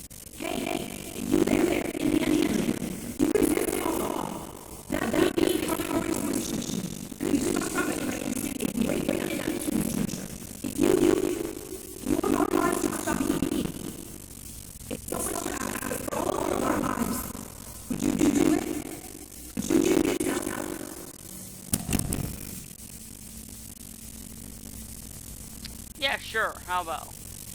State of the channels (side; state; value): both; identical; correlation 1.00